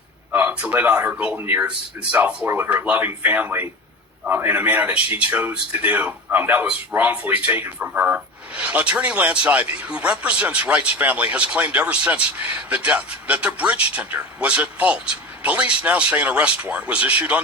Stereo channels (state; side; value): normal; both; correlation 0.30